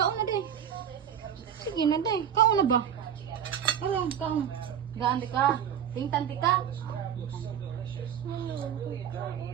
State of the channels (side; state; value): left; quieter; 9.0 dB